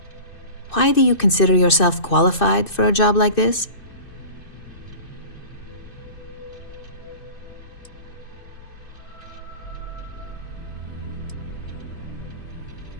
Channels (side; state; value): right; late; 2.6 ms